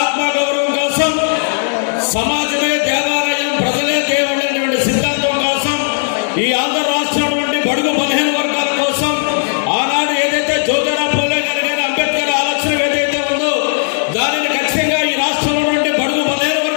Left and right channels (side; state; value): right; silent; 69 dB below the other